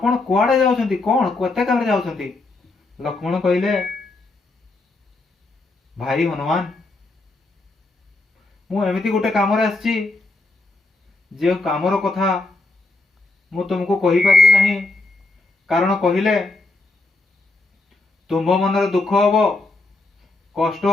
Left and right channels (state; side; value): quieter; right; 3.2 dB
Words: कुआडे जाउछंती, कोन केते कामे जाउछंती? लक्ष्मण कहले भाई हनुमान मु एमिति गोटे काम रे आछि जे कामर कथा मु तुमको कहि पारिबि नाही, कारण कहिले तुम मन रे दुख हबो, कष्ट